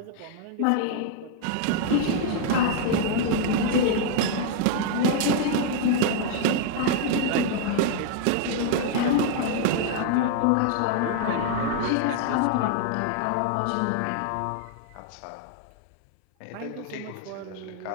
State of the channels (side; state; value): both; different; correlation 0.00